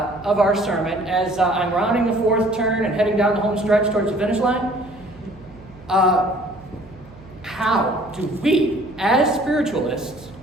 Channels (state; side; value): noise; right; hum, 22 dB below the sound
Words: sermon, as I'm rounding the 4th turn and heading down the home stretch towards the finish line, how do we, as spiritualists,